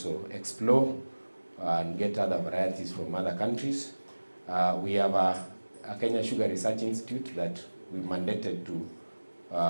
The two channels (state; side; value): inverted; both; correlation -1.00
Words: explore and get other varieties from other countries. We have a Kenya Sugar Research Institute that we mandated to